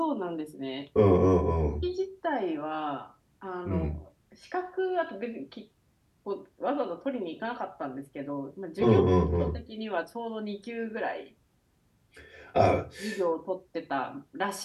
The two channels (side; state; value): both; identical; correlation 1.00